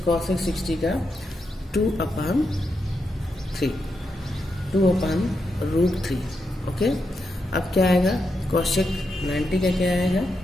कौशिक 60 का 2/3 2/√3। ओके, अब क्या आएगा, कौशिक 90 का क्या आएगा,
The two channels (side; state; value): both; normal; correlation 0.84